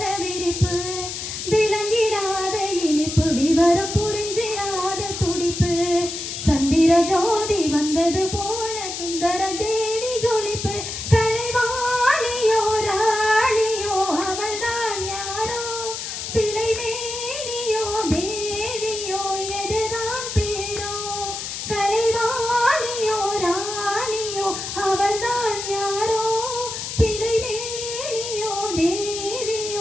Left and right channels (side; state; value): left; noise; hiss, 6 dB below the sound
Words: விரிப்பு விளங்கிடாத இனிப்பு விவரம் புரிஞ்சிடாத துடிப்பு சந்திர ஜோதி வந்தது போல சுந்தர தேவி ஜொலிப்பு கலைவாணியோ ராணியோ அவள்தான் யாரோ சிலை மேனியோ தேவியோ எதுதான் பேரோ கலைவாணியோ ராணியோ அவள்தான் யாரோ சிலை மேனியோ